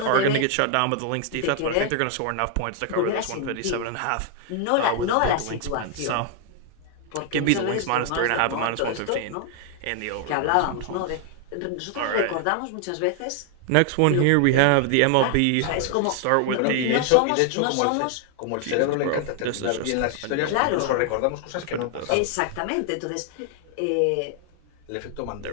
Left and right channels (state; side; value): different; both; correlation 0.00